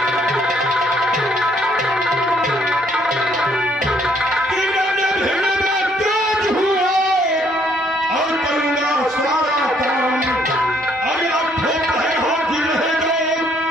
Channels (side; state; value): both; normal; correlation 0.67